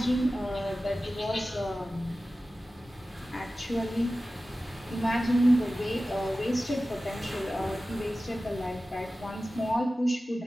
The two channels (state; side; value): normal; both; correlation 0.95